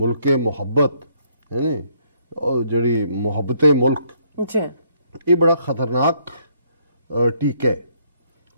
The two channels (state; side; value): inverted; both; correlation -0.69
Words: ਮੁਹੱਬਤ ਹੈ ਨੀ, ਜਿਹੜੀ ਮੁਹੱਬਤੇ ਮੁਲਕ, ਇਹ ਬੜਾ ਖਤਰਨਾਕ ਟੀਕਾ ਹੈ।